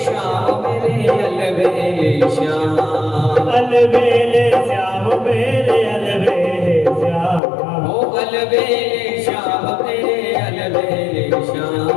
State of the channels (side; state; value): right; drops out; at 7.4 s